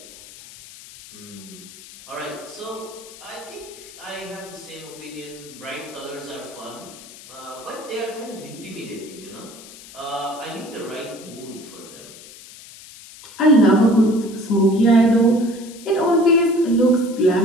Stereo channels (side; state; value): left; noise; hiss, 18 dB below the sound